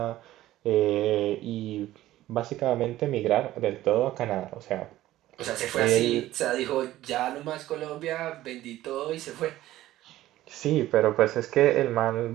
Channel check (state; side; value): quieter; left; 15.0 dB